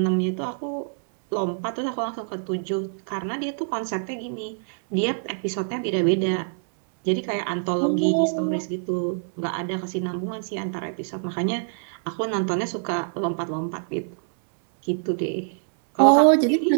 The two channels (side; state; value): left; silent; 62 dB below the other